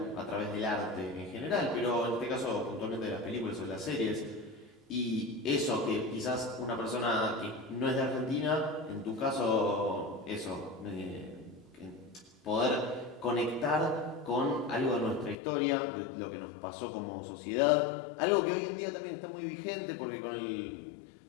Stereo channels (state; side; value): drops out; right; at 15.4 s